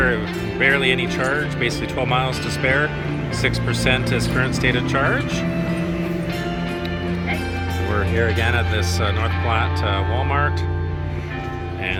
barely any charge, basically 12 miles to spare. 6% is current state of charge. We're here again at this North Platte Walmart,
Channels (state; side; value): identical; both; correlation 1.00